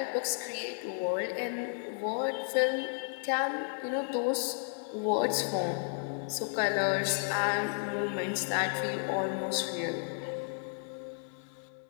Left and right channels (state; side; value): silent; right; 56 dB below the other